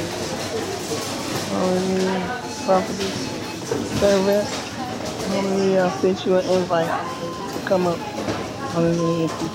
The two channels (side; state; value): both; identical; correlation 1.00